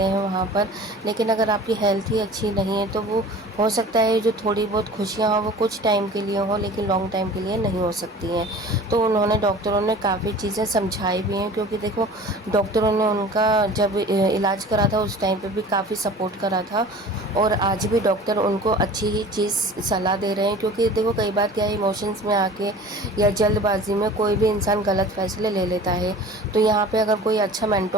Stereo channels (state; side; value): normal; both; correlation 0.42